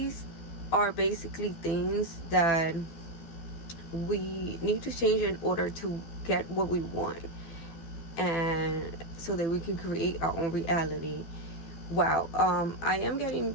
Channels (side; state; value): right; late; 12 ms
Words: are basically things that we need to change in order to get what we want, and so that we can create our own reality. Wow, I am getting,